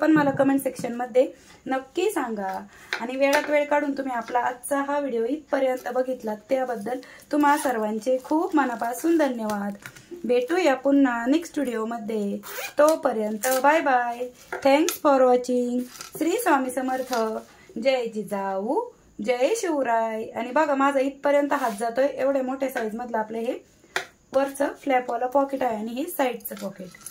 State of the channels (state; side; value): identical; both; correlation 1.00